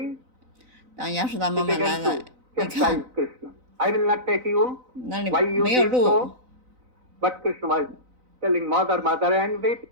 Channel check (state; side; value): late; left; 4.0 ms